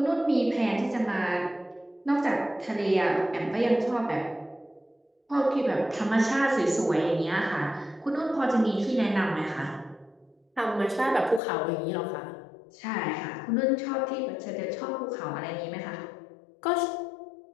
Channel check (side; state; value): right; drops out; at 11.4 s